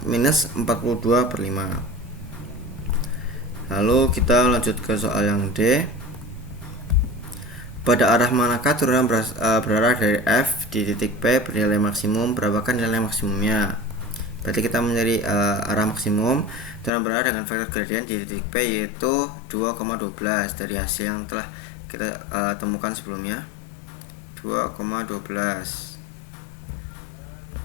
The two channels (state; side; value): drops out; right; at 16.9 s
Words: minus 42/5. Lalu kita lanjut ke soal yang D. Pada arah manakah turunan berarah dari F di titik P bernilai maksimum? Berapakah nilai maksimumnya? Berarti kita mencari arah maksimum turunan berarah dengan vektor gradien di titik P, yaitu 2,12 dari hasil yang telah kita temukan sebelumnya, 2,12.